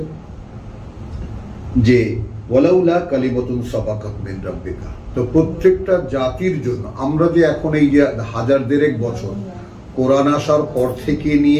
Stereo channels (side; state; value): both; identical; correlation 1.00